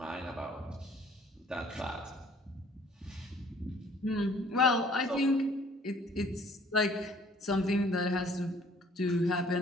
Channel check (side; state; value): both; normal; correlation 0.56